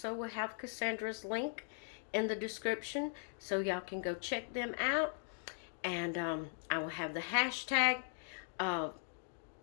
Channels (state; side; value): silent; right; digital silence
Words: will have Cassandra's link in the description, so y'all can go check them out. And I will have the hashtag